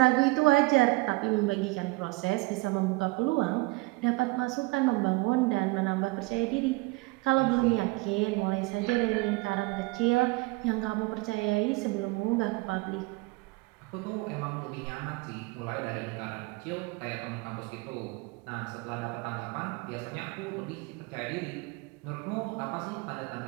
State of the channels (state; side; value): quieter; left; 23.9 dB